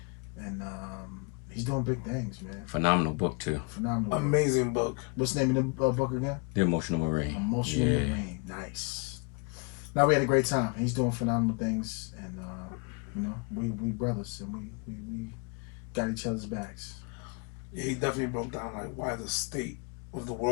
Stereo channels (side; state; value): right; quieter; 33.6 dB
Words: And he's doing big things, man. Phenomenal book, too. Phenomenal. Amazing book. What's the name of the book again? The Emotional Marine. Emotional Marine. Nice. Now, we had a great time. He's doing phenomenal things. And, we brothers. And we got each other's backs. Yeah, he definitely broke down like why the state of the